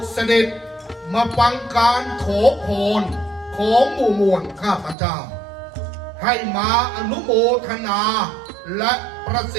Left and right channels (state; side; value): drops out; left; at 5.0 s